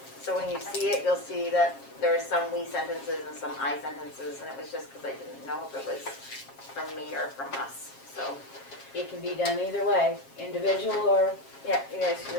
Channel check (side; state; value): right; late; 7.4 ms